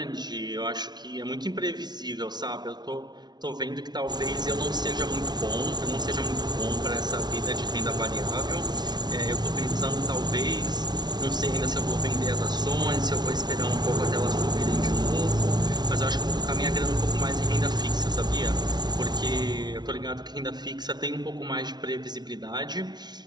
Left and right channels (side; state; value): left; late; 0.20 ms